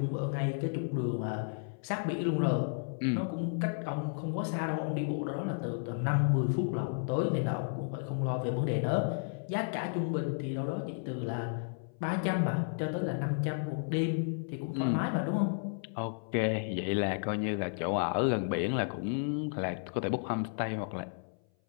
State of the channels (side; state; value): right; silent; 56 dB below the other